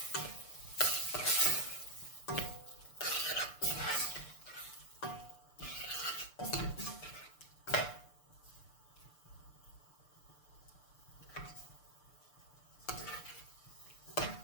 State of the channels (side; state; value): right; late; 6.7 ms